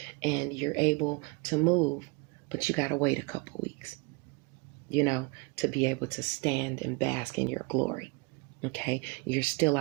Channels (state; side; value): quieter; left; 29.1 dB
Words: and you're able to move, but you got to wait a couple weeks, to be able to stand and bask in your glory. Okay, you're still